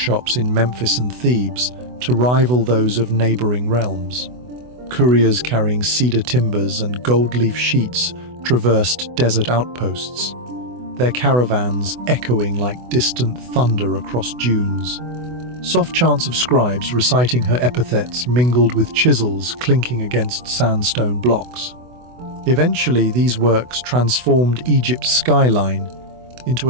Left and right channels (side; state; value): left; late; 24 ms